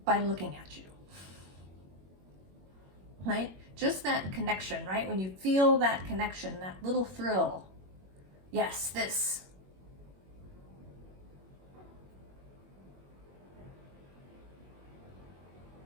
by looking at you, right? Just that connection, right? When you feel that connection, that little thrill, yes, this.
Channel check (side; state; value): left; late; 21 ms